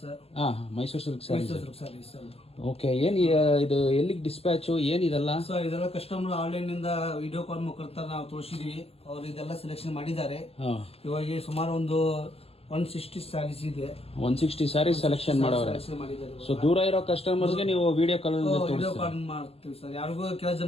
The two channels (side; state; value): right; late; 0.29 ms